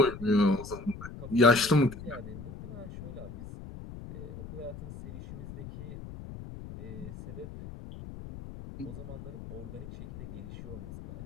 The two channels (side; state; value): left; noise; rumble, 12 dB below the sound